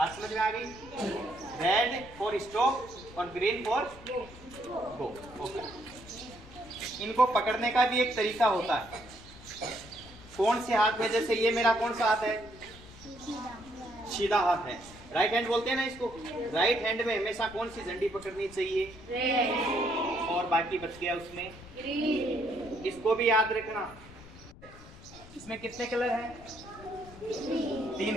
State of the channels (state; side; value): noise; left; rumble, 19 dB below the sound